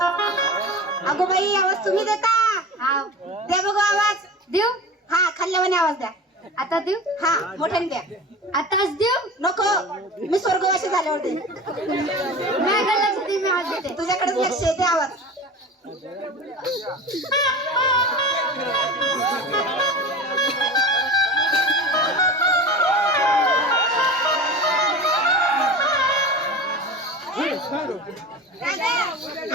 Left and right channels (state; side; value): normal; both; correlation 0.32